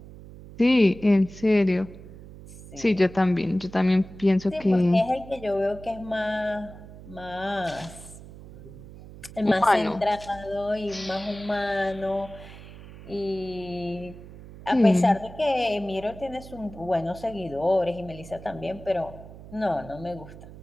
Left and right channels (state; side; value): noise; right; hum, 17 dB below the sound